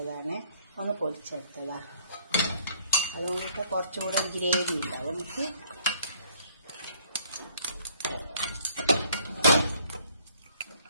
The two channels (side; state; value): both; inverted; correlation -0.62